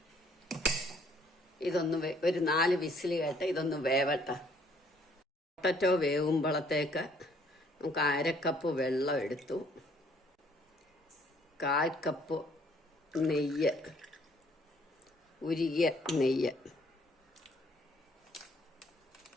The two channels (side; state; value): both; normal; correlation 0.63